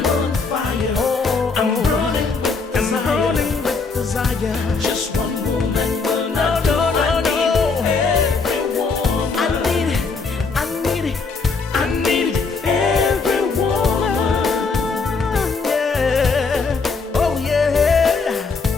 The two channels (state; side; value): quieter; right; 4.5 dB